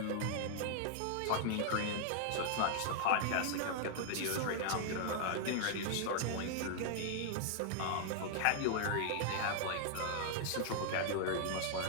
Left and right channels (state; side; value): different; both; correlation -0.01